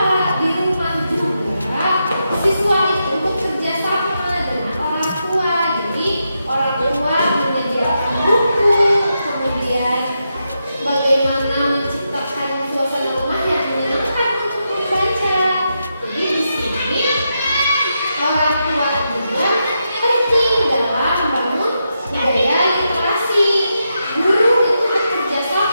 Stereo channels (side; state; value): both; inverted; correlation -0.85